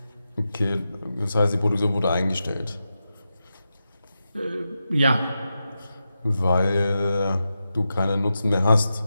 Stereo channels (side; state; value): both; inverted; correlation -0.90